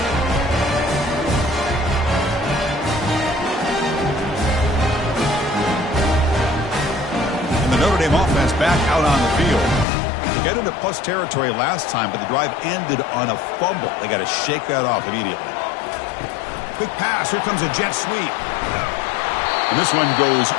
Notre Dame offense back out on the field. They got into plus territory last time, but the drive ended on a fumble. They got to shake that off immediately. Quick pass. Here comes a jet sweep. And this one goes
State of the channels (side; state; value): right; drops out; at 9.9 s